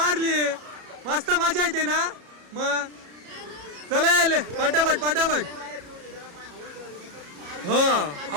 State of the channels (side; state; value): left; late; 34 ms